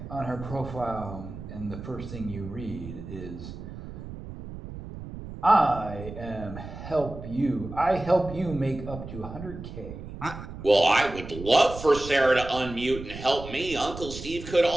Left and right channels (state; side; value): noise; right; rumble, 11 dB below the sound